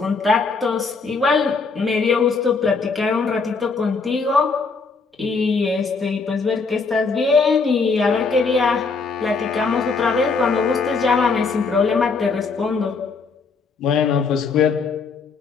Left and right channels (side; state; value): right; quieter; 4.6 dB